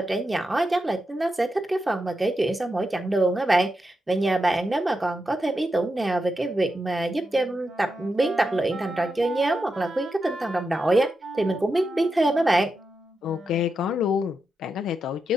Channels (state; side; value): normal; both; correlation 0.87